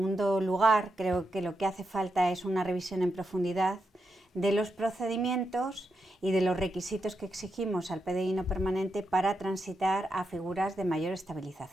lugar, creo que lo que hace falta es una revisión en profundidad de los procedimientos y de los requisitos que exigimos al PDI no permanente para transitar a figuras de mayor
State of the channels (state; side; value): normal; both; correlation 0.85